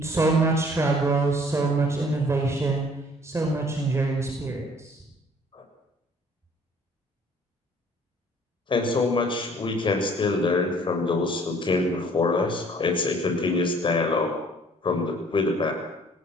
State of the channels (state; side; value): normal; both; correlation 0.56